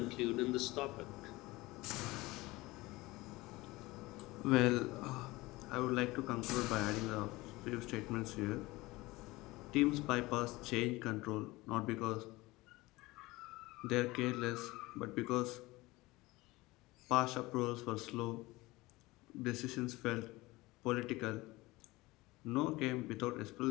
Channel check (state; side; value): quieter; right; 20.7 dB